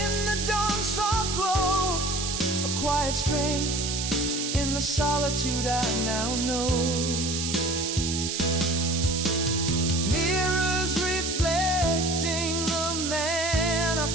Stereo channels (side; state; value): right; noise; hiss, 2 dB below the sound